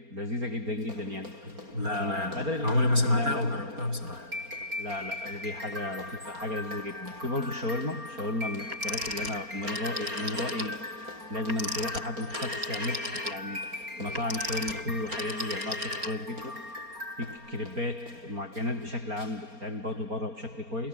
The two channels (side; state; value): left; late; 4.3 ms